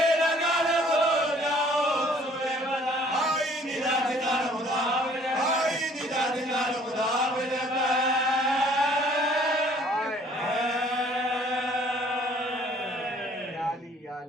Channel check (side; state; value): both; normal; correlation 0.57